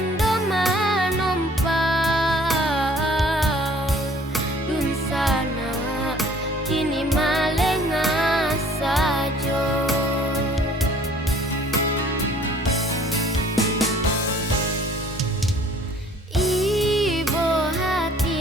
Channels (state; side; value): normal; both; correlation 0.55